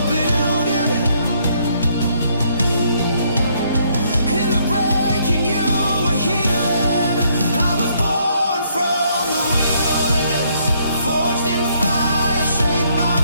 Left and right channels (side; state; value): both; inverted; correlation -0.69